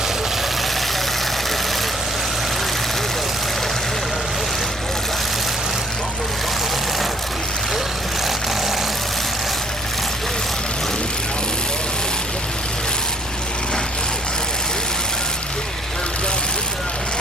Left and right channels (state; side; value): noise; right; hum, 23 dB below the sound